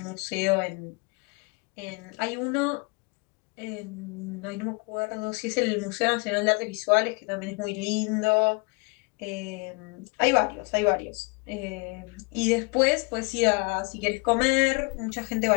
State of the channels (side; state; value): right; quieter; 29.9 dB